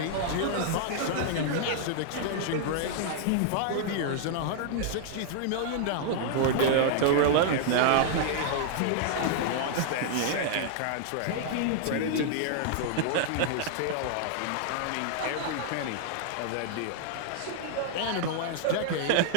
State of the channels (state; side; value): different; both; correlation -0.01